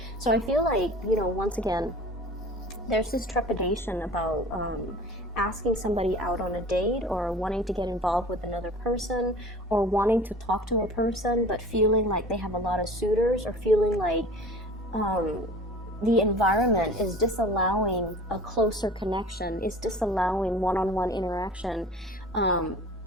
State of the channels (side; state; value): both; normal; correlation 0.42